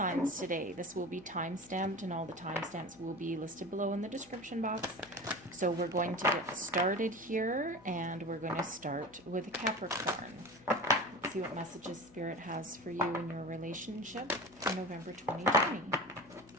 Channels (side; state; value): left; noise; hum, 25 dB below the sound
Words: today. This will be time-stamped, and all the timestamps will be listed below in the description box. So we're going to get started here, and we're going to start with Capricorn. Let's see what messages Spirit has for you in your relationship for November 2020.